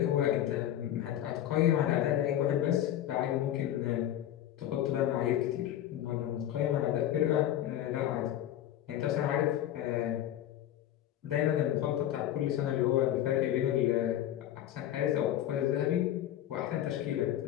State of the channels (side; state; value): right; quieter; 12.0 dB